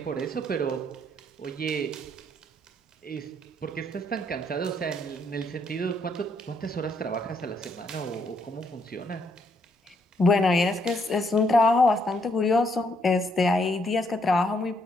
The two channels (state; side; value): normal; both; correlation 0.72